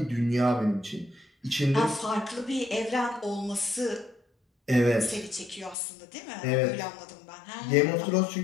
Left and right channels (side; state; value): right; drops out; at 5.8 s